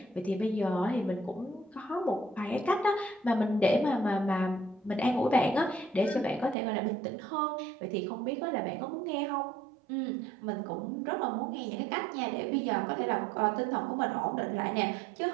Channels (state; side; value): drops out; left; at 6.6 s